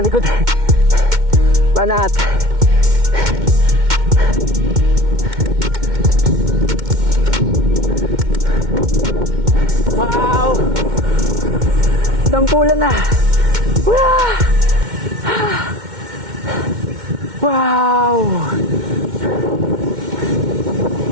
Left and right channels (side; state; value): left; late; 2.1 ms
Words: likod. Banat. Wow! Dampulan na. Wow!